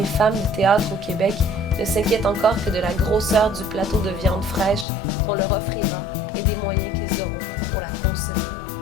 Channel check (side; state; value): right; drops out; at 4.9 s